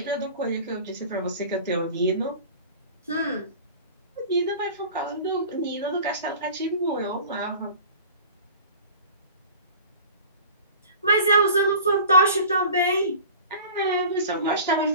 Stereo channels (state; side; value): inverted; both; correlation -0.41